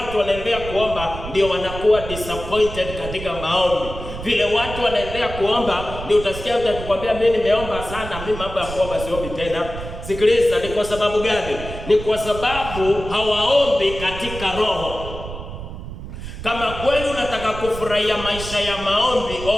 wanaendelea kuomba ndio wanakuwa disappointed katika maombi. Vile watu wanaendelea kuomba ndio utasikia mtu akikwambia mimi nimeomba sana, mimi mambo ya kuomba siombi tena. Sikiliza, ni kwa sababu gani? Ni kwa sababu hawaombi katika roho. Kama kweli unataka kufurahia maisha ya maombi,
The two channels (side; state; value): right; noise; rumble, 10 dB below the sound